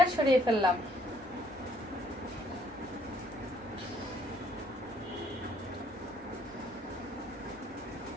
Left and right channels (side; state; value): both; normal; correlation 0.64